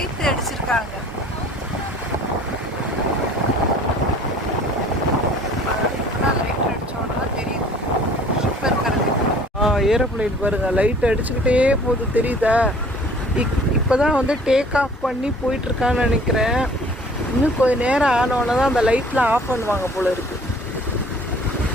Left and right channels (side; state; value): both; normal; correlation 0.51